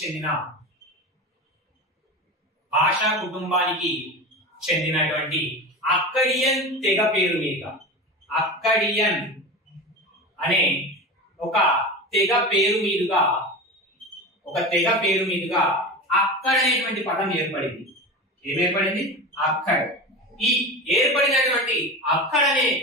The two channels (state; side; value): normal; both; correlation 0.27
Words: కుటుంబానికి చెందినటువంటి అక్కడియన్ తెగ పేరు మీదుగా అక్కడియన్ అనే ఒక తెగ పేరు మీదుగా అక్కడ అనేటువంటి పదం ఏర్పడింది. ఏమేర్పడింది? అక్కడ్. ఈ ఏర్పడినటువంటి అక్కడ అనే